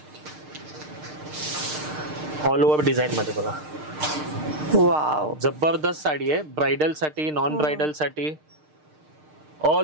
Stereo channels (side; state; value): left; late; 6.6 ms